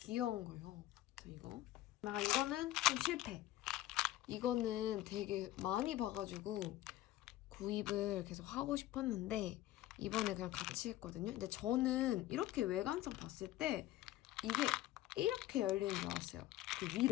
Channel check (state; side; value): quieter; right; 15.2 dB